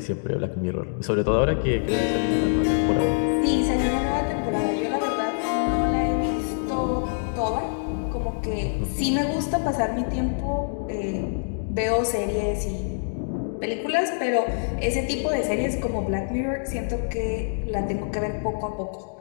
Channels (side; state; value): right; silent; digital silence